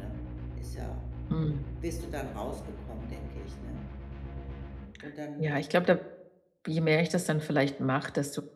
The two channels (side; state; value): both; identical; correlation 1.00